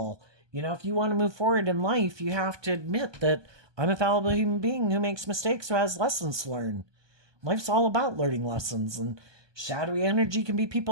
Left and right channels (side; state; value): left; late; 1.2 ms